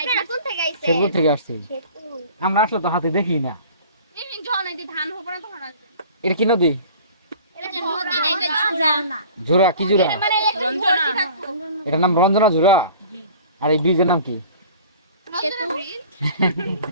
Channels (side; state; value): both; inverted; correlation -0.45